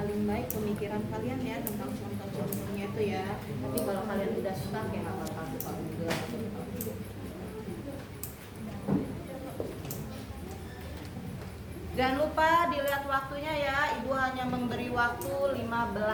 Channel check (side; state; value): both; identical; correlation 1.00